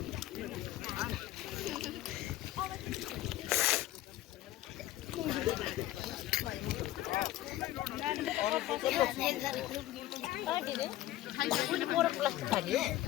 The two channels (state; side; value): quieter; right; 15.0 dB